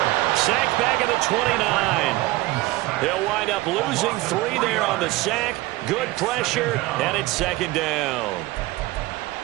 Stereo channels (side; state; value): left; quieter; 19.2 dB